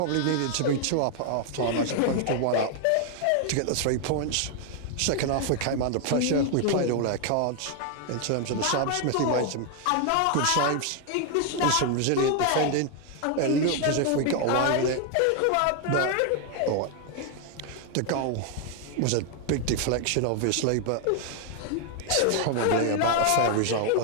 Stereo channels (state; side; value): different; both; correlation 0.00